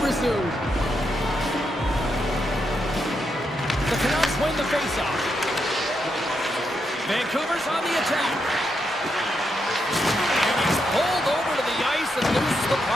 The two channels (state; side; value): normal; both; correlation 0.82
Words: resume. The Canucks win the faceoff. Vancouver's on the attack. And he's pulled over to the ice and loses the